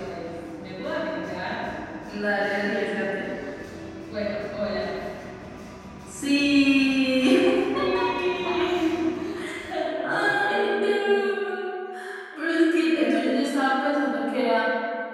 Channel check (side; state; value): both; identical; correlation 1.00